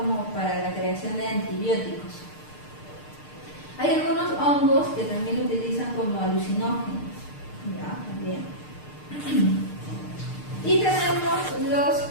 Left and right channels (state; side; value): late; right; 6.6 ms